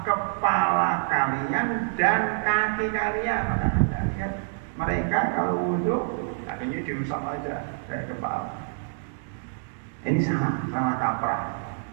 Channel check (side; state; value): left; silent; digital silence